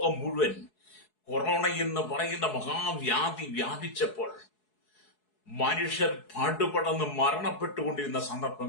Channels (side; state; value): right; late; 4.7 ms